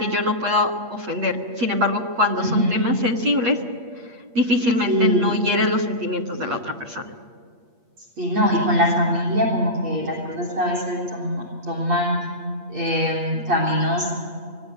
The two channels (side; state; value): left; late; 8.5 ms